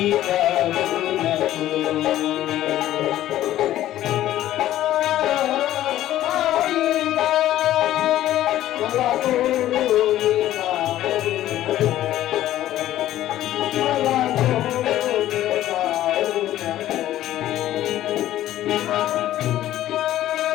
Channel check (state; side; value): quieter; right; 13.5 dB